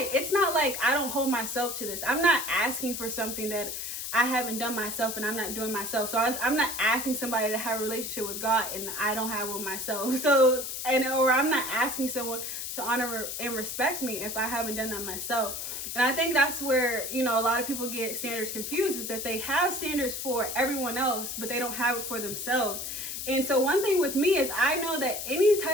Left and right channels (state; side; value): noise; left; hiss, 5 dB below the sound